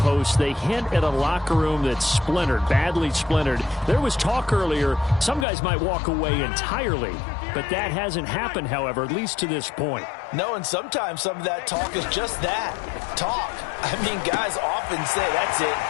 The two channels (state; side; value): drops out; right; at 5.5 s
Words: they hint at a locker room that's splintered, badly splintered. There was talk earlier, some guys might walk away entirely. But that hasn't happened, however, at least to this point. No, and sometimes some of that talk is just that, talk. I mean, guys often say, that's it,